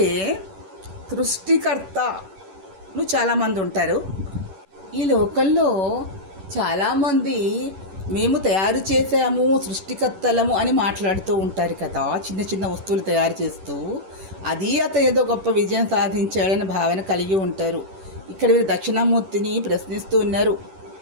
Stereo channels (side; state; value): left; late; 11 ms